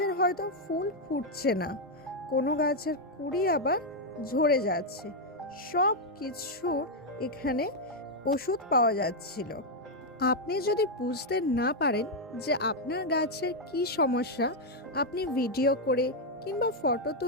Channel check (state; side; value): normal; both; correlation 0.00